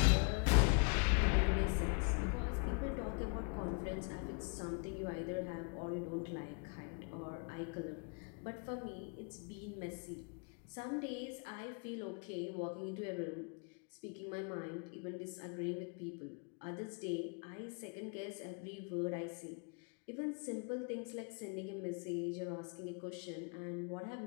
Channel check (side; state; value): right; quieter; 37.2 dB